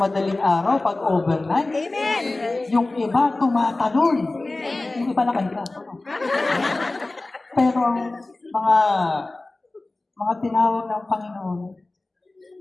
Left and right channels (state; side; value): quieter; right; 3.0 dB